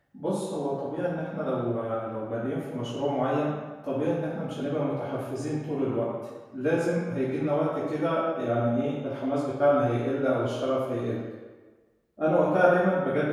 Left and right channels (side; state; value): both; identical; correlation 1.00